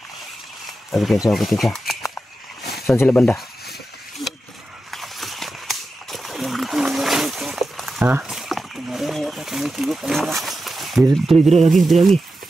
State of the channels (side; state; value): both; normal; correlation 0.91